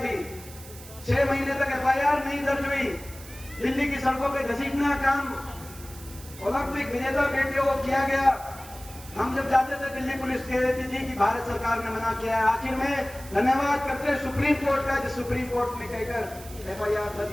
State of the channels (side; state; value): right; noise; hiss, 18 dB below the sound